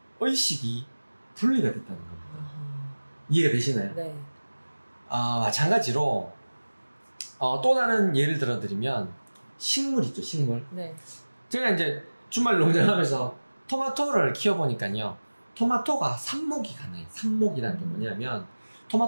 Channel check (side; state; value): both; inverted; correlation -1.00